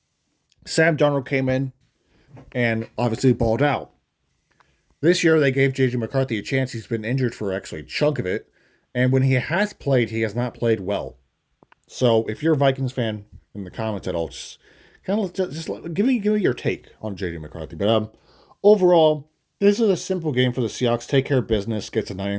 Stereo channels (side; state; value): both; identical; correlation 1.00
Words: Sam Darnold came in and obviously balled out. This year they gave JJ McCarthy a chance. He's been injured for actually a chunk of it, and when he has played, he has not played well. So if you're a Vikings fan in the comments at all, just kind of give me your take on JJ McCarthy. But overall, this is a simple game for the Seahawks. Take care of business, gets a